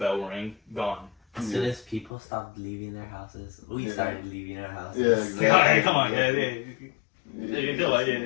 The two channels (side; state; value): right; drops out; at 2.1 s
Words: rang, gone. As soon as people stopped leaving their houses, we Yeah. started leaving our houses. Yeah, exactly. Hey, come on, yeah. Yeah, You do it,